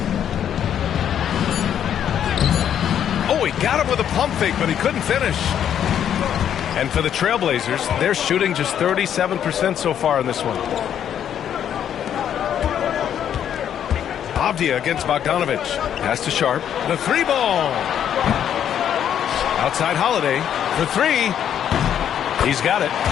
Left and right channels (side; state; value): right; quieter; 9.5 dB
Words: Oh, he got him with a pump fake, but he couldn't finish. And for the Trailblazers, they're shooting just 37% so far in this one. Avdia against Bogdanovich. Pass to Sharp. The 3-ball. Outside Holiday for 3. He's got it.